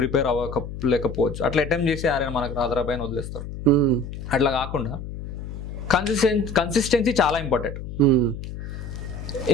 అవ్వలేకపోవచ్చు, అట్లా అటెంప్ట్ చేసి ఆరే మనకు రాదరాబాయ్ అని వదిలేస్తారు. అట్లా కాకుండా కన్సిస్టెన్సీ చాలా ఇంపార్టెంట్.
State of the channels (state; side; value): noise; left; hum, 9 dB below the sound